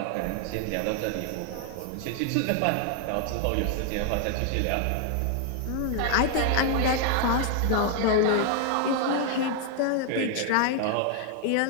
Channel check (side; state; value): both; different; correlation 0.00